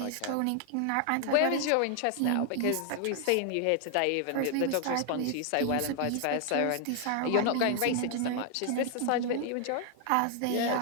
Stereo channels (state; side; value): different; both; correlation 0.00